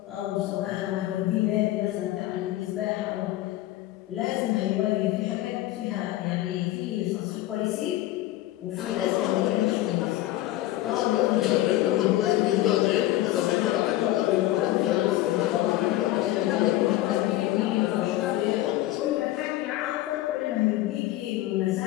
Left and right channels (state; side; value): quieter; right; 15.6 dB